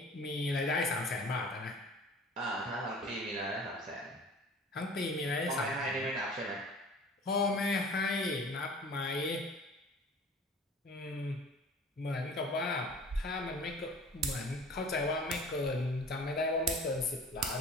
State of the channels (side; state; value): both; normal; correlation 0.45